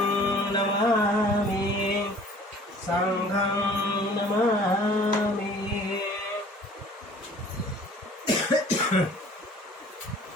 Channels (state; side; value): normal; both; correlation 0.51